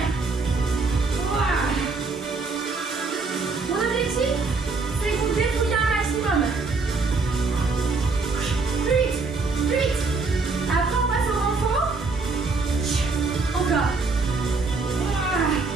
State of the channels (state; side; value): quieter; left; 4.0 dB